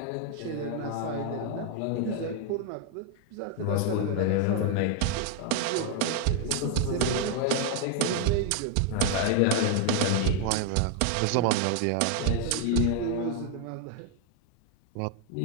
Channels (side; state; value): both; different; correlation 0.00